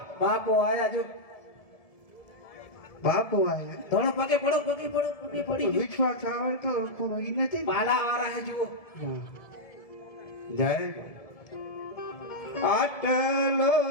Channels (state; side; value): late; right; 1.7 ms